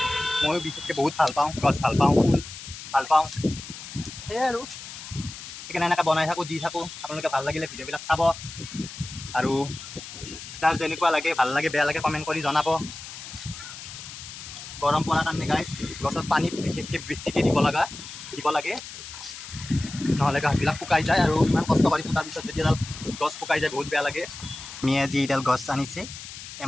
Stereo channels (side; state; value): left; noise; hiss, 12 dB below the sound